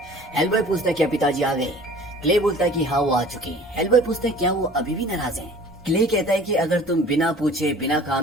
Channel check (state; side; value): normal; both; correlation 0.47